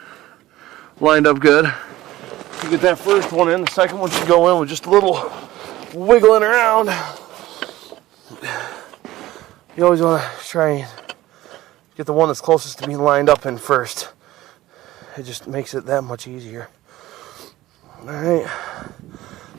Lined up good. You get that first one in, the second one should go in with just a little wiggling around. You always want to try and get the one that's closest to being lined up in first. It just makes it that much easier. Alright,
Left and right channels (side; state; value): left; quieter; 16.3 dB